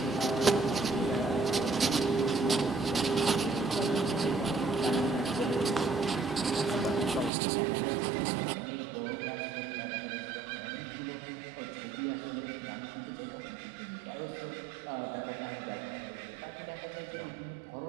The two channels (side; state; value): left; drops out; at 7.3 s